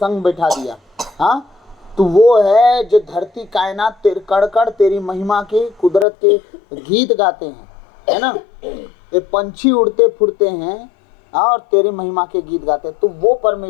बैठा दिया। हाँ, तो वो है जो धरती कायनात कण कण तेरी महिमा के, कुदरत के गीत गाते हैं, है ना। ये पंछी उड़ते फुड़ते हैं और तेरी महिमा के गीत गाते हैं। तो वो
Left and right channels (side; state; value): right; drops out; at 6.1 s